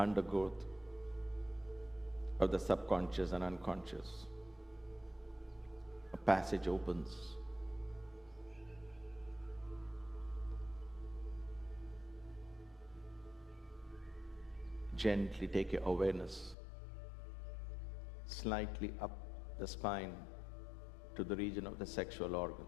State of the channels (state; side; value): drops out; right; at 16.6 s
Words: of the subconscious and unconscious, a passage opens. Gently take your awareness slightly up the spine to the region of the sexual